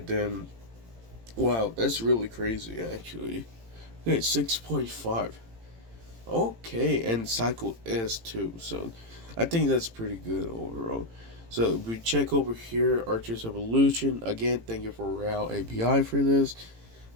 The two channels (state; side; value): late; left; 18 ms